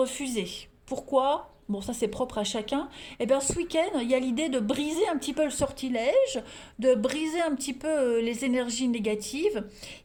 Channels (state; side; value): identical; both; correlation 1.00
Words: Pourquoi ? Bon, ça c'est propre à chacun. Eh bien, ce week-end, il y a l'idée de briser un petit peu le sortilège, de briser un petit peu les énergies négatives,